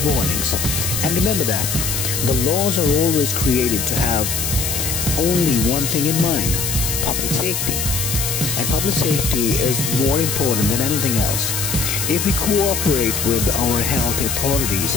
warnings. And remember that the laws are always created to have only one thing in mind: public safety. And public safety is more important than anything else. If we cooperate with our health authorities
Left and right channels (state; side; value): noise; left; hiss, 1 dB below the sound